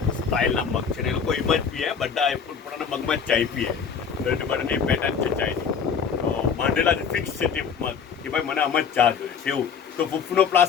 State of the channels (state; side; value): quieter; right; 6.6 dB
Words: સ્ટાઇલના મગ છે ને એ લોકો એમ જ પીએ બધા પોતાના મગમાં જ ચાય પીએ તો એટલે બધાની પેટર્ન છે ચાયની તો માંડેલા ફિક્સ છે તે મગ કે ભાઈ મને આમ જ ચા જોઈએ છે એવું તો ફૂફનો